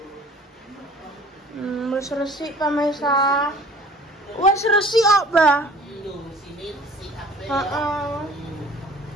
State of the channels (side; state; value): both; normal; correlation 0.49